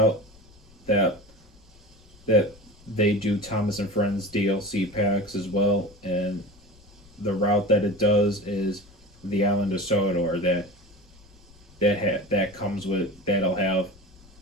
that that they do Thomas and Friends DLC packs as well, and the route that it does is the Island of Sodor that comes with that'll have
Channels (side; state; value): left; noise; rumble, 25 dB below the sound